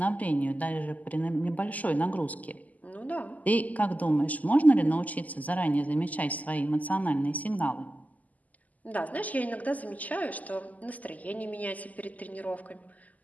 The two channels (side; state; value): right; late; 0.077 ms